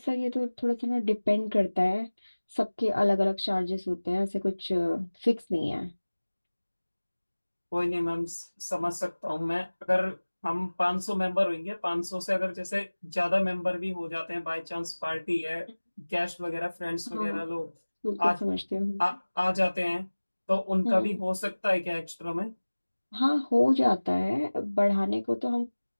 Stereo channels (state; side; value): inverted; both; correlation -1.00